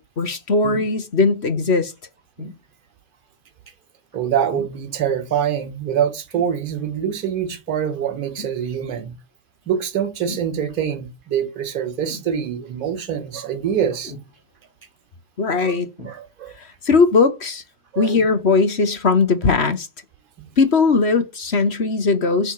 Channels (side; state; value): right; late; 3.0 ms